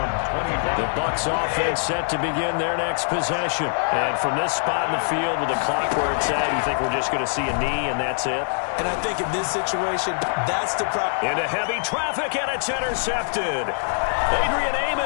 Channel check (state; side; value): silent; right; 58 dB below the other